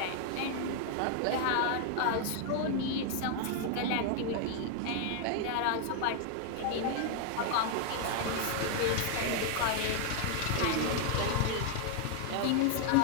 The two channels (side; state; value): both; different; correlation 0.00